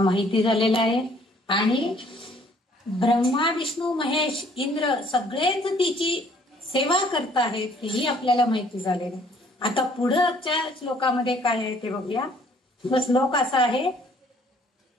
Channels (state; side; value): normal; both; correlation 0.60